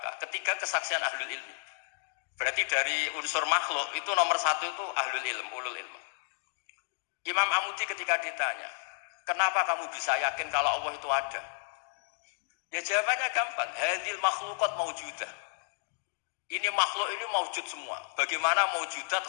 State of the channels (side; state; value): right; silent; 56 dB below the other